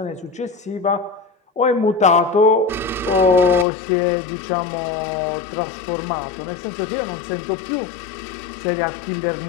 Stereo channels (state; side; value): drops out; right; at 3.7 s